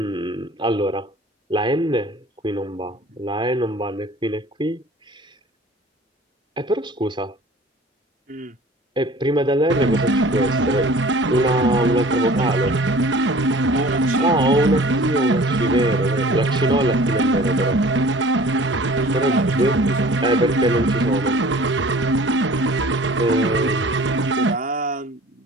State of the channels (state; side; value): normal; both; correlation 0.46